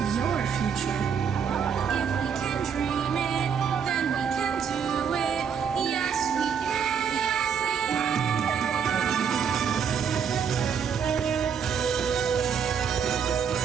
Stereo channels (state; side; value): quieter; left; 7.2 dB